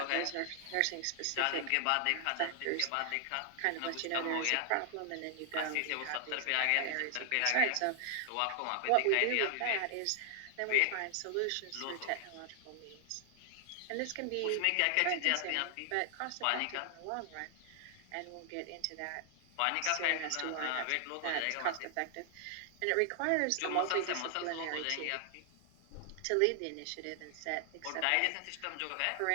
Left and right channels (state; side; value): different; both; correlation 0.00